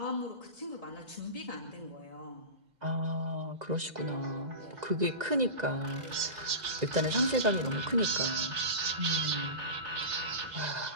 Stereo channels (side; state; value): left; late; 2.0 ms